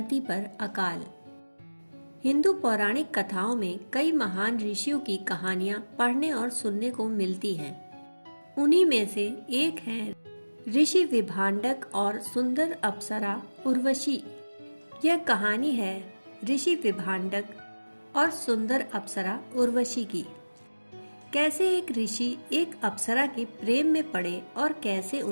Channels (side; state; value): both; inverted; correlation -1.00